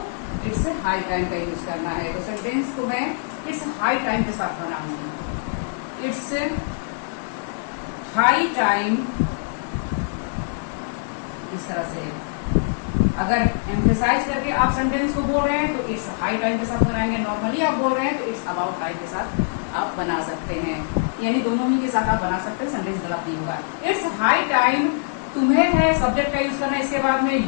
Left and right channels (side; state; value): right; silent; 63 dB below the other